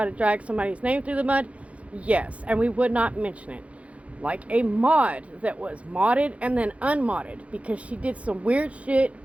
to drag somebody's name through the mud? Yes, and we would not mention it. Like a mod that was modded and then unmodded because she did some weird shit,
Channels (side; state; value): left; late; 0.064 ms